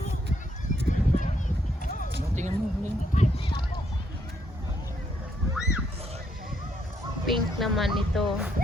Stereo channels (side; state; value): both; normal; correlation 0.74